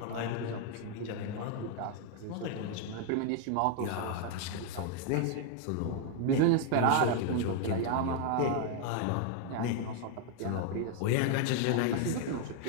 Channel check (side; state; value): both; different; correlation 0.00